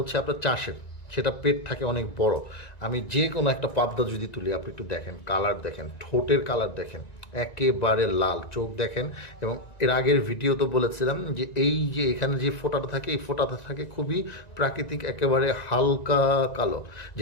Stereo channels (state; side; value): late; right; 1.9 ms